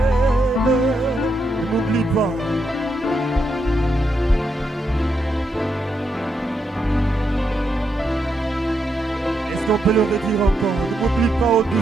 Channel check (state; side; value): normal; both; correlation 0.81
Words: Ne m'oublie pas. Est-ce qu'on peut le redire encore? Ne m'oublie pas, ô